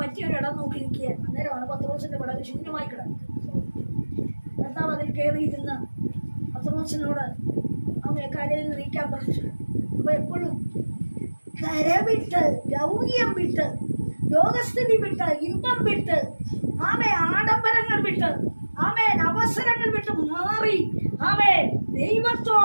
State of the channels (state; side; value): inverted; both; correlation -1.00